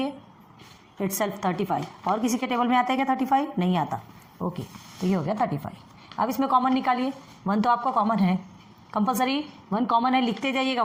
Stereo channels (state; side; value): identical; both; correlation 1.00